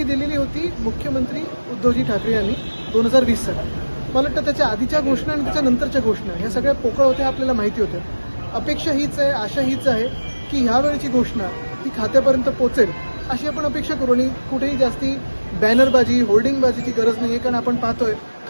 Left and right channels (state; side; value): inverted; both; correlation -1.00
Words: दिलेली होती मुख्यमंत्री उद्धवजी ठाकरे यांनी 2020 साली. मला वाटतं त्याच्या आधीच्या घोषणा आणि त्याच्या नंतरच्या घोषणा ह्या सगळ्या पोकळ होत्या, आपल्याला माहिती होत्या. अपेक्षा हीच आहे, आशा हीच आहे की ह्यावेळची घोषणा ही खात्यापर्यंत पोहोचेल अशी आपण अपेक्षा करू. आणि कुठेही जास्ती बॅनरबाजी होर्डिंगबाजीची गरज नाही आहे, कारण आपण पाहतोय